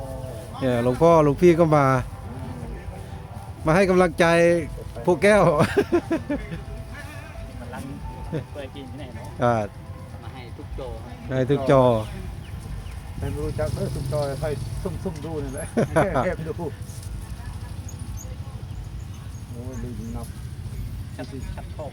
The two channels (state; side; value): identical; both; correlation 1.00